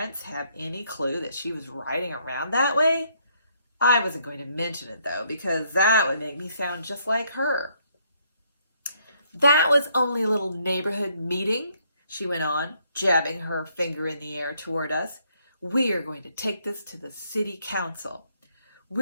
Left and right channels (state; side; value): inverted; both; correlation -0.70